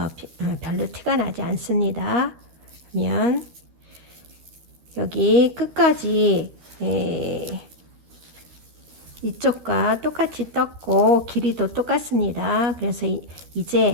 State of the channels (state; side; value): late; left; 13 ms